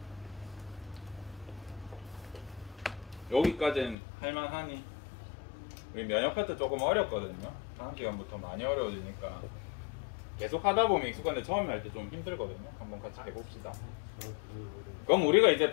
여기까지는 할만하니? 우리 면역 파트 조금 어렵거든요. 다음 시간부터 많이 어려워지니까 계속 하다 보면 익숙한데 처음에 할 때 좀 힘들거든요. 한번 같이 해봅시다. 그럼 우리가 이제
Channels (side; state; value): right; drops out; at 4.0 s